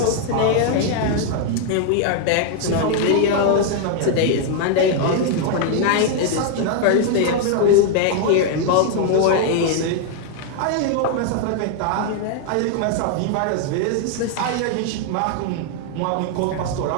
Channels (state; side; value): different; both; correlation 0.00